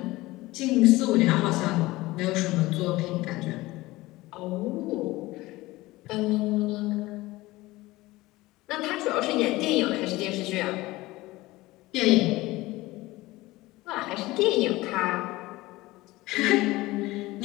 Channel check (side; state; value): right; quieter; 19.3 dB